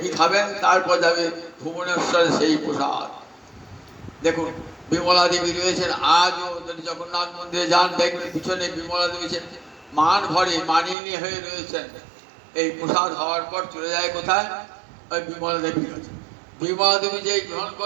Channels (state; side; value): drops out; left; at 11.0 s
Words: খাবেন, তারপর যাবে ভুবনেশ্বরে সেই প্রসাদ। দেখুন বিমলা দেবী রয়েছেন আজও, যদি জগন্নাথ মন্দিরে যান দেখবেন পিছনে বিমলা দেবী মান ভরে মানিনী হয়ে রয়েছেন। এই প্রসাদ হওয়ার পর চলে যায় কোথায়? ওই বিমলা দেবীর কাছে। বিমলা দেবী যেই গ্রহণ